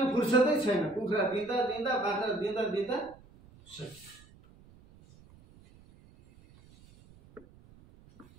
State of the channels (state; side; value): noise; right; rumble, 25 dB below the sound